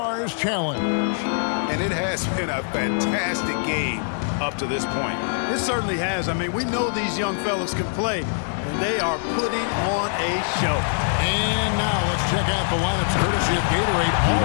Challenge. And it has been a fantastic game up to this point. It certainly has. I mean, we know these young fellas can play, and they are putting on a show. And now let's check out the lineups courtesy of Gatorade,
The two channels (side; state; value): right; silent; 62 dB below the other